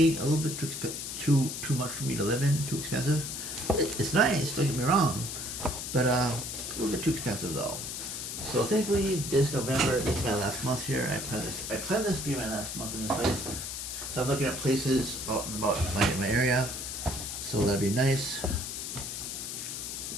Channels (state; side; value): noise; left; hiss, 6 dB below the sound